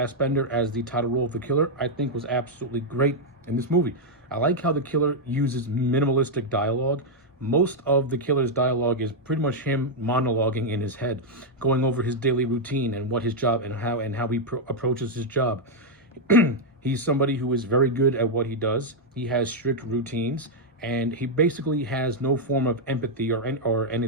as the title role of the killer, I think was absolutely great in this movie. I like how the killer uses minimalistic dialogue. Most of the killer's dialogue is pretty much him monologuing in his head, going over his daily routine and what his job and how he approaches his job. He's somebody who is very good at what he does. He has strict routines, and he basically has no form of empathy or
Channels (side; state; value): both; normal; correlation -0.02